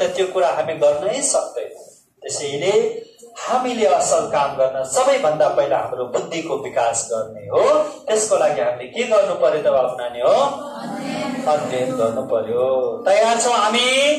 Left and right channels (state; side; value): identical; both; correlation 1.00